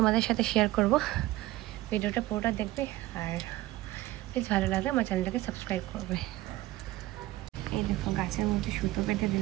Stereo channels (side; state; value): left; quieter; 16.9 dB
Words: সাথে শেয়ার করব। ভিডিওটা পুরোটা দেখবে, আর প্লিজ ভালো লাগলে আমার চ্যানেলটাকে সাবস্ক্রাইব করবে। এই দেখো গাছের মধ্যে সুতো পেতে